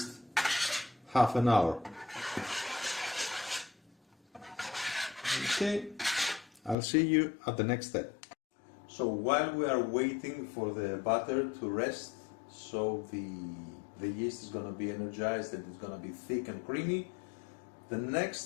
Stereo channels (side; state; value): right; drops out; at 6.8 s